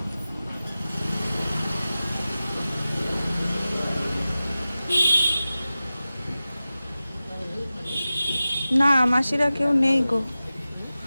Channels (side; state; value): both; inverted; correlation -0.95